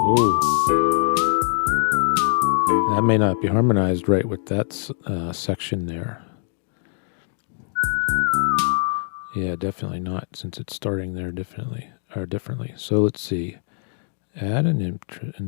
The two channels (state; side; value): silent; right; digital silence